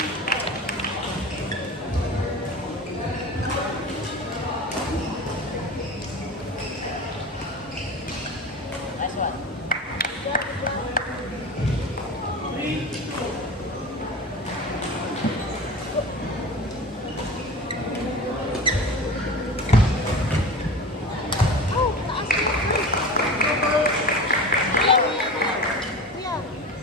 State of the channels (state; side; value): normal; both; correlation 0.32